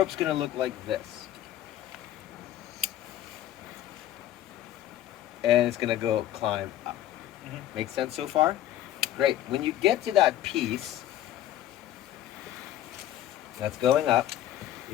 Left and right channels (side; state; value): right; quieter; 12.4 dB